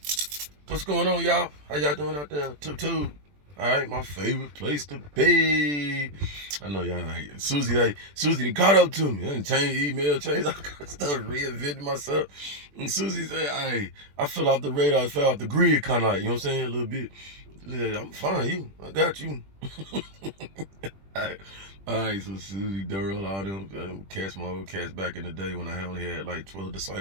What's going on, y'all? How y'all doing out there? Tube. All right, my favorite place to be. I know y'all right. Susie done caught up to me. I done changed email, changed all kind of stuff, reinvented myself. And Susie said, hey, I fell off the radar, fell off the grid, kind of like, you know what I'm saying, a little bit. She said, I'm fine, I got you. All right, so Susie, Durrell, all them cats, my old cats back in the day when I only had like 12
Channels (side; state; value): left; late; 20 ms